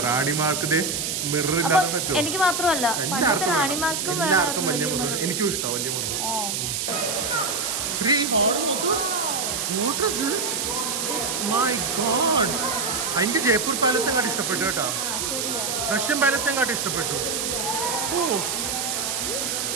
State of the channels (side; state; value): right; noise; hiss, 1 dB below the sound